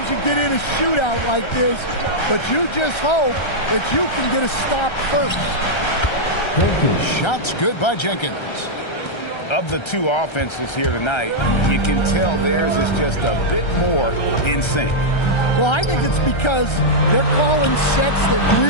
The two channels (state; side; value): late; right; 1.3 ms